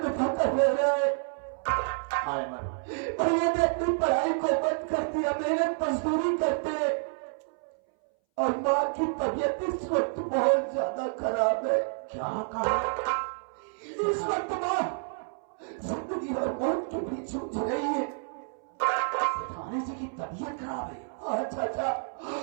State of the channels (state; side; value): silent; left; 58 dB below the other